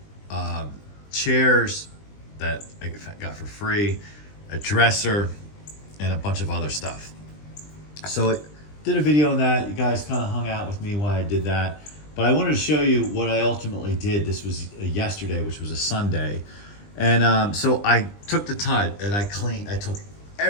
chairs that I got for free, a dresser, and a bunch of other stuff. So it did a video on that. You guys kind of hung out with me while I did that. But I wanted to show you what I ultimately did. This was yesterday, which was a Sunday. And so I took the time and I took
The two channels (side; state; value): right; late; 20 ms